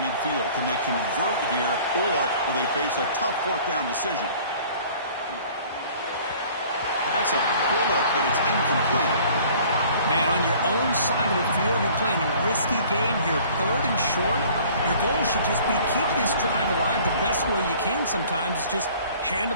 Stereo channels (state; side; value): inverted; both; correlation -0.51